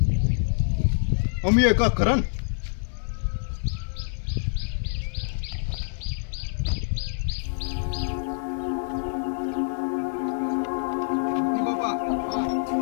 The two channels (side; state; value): right; silent; digital silence